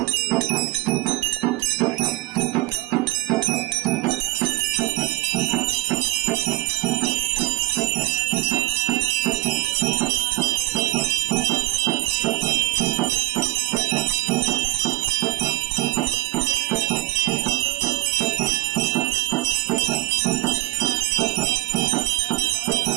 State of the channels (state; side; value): quieter; left; 20.8 dB